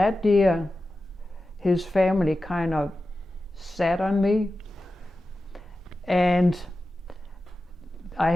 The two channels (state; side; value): normal; both; correlation 0.93